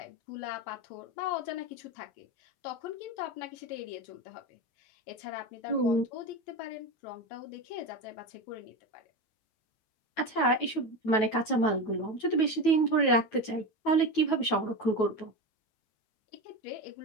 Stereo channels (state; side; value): late; right; 9.2 ms